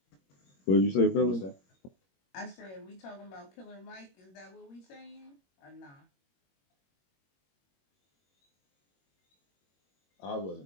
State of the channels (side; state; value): right; late; 21 ms